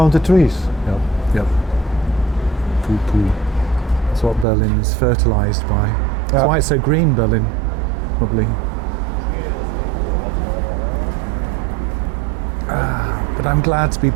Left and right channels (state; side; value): drops out; left; at 4.5 s